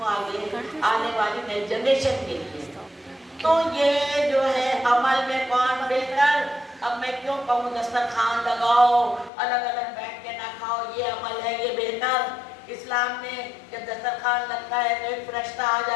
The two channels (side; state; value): right; drops out; at 9.3 s